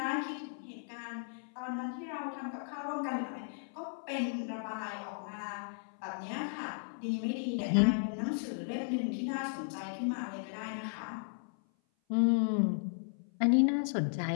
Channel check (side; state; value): right; silent; 54 dB below the other